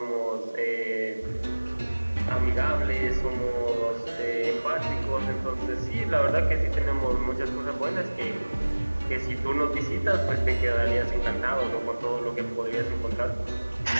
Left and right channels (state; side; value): inverted; both; correlation -1.00